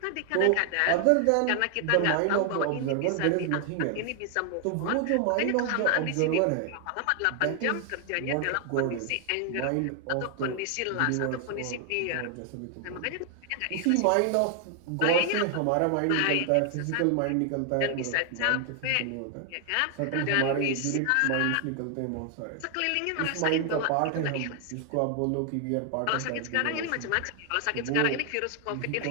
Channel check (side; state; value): both; different; correlation 0.00